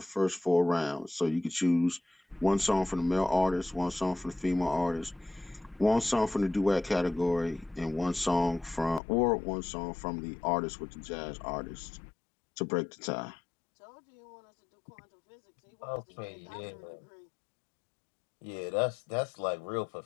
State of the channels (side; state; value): right; drops out; at 9.0 s